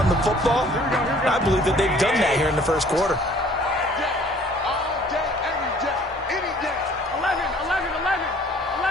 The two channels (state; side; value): normal; both; correlation 0.55